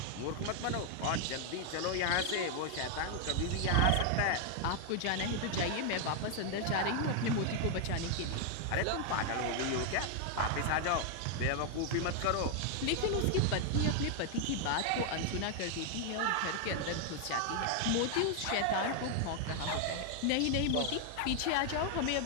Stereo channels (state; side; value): different; both; correlation 0.00